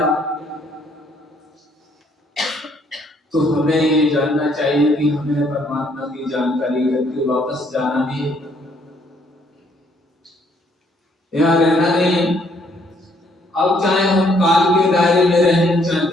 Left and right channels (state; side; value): normal; both; correlation 0.67